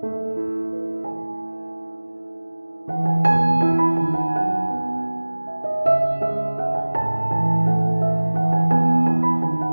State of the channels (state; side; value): inverted; both; correlation -1.00